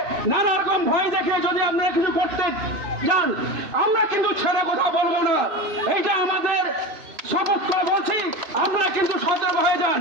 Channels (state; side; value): late; left; 2.8 ms